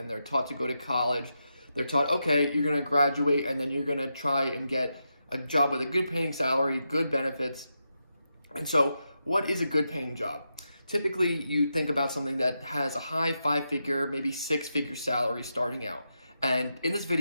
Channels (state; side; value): inverted; both; correlation -0.86